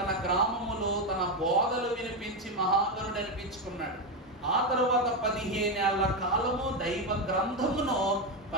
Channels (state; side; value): normal; both; correlation 0.10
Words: గ్రామములో తన బోధలు వినిపించి మహాగరుడు అనిపించుకున్నాడు. ఆ తరువాత 15 ఏళ్ల కాలము దైవ గ్రంథమును